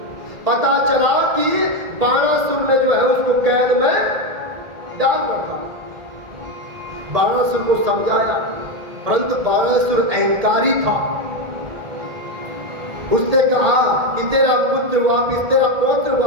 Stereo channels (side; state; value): left; late; 1.8 ms